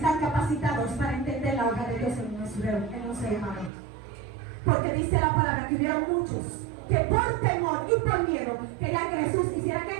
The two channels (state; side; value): drops out; left; at 3.7 s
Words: capacitados para entender la obra de Dios en un ser humano. Porque dice la palabra que hubieron muchos que por temor y por miedo querían que Jesús hiciera ¿qué?